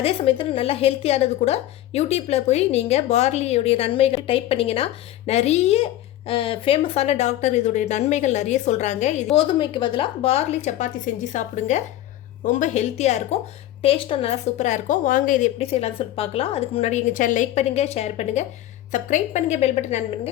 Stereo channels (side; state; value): right; quieter; 13.7 dB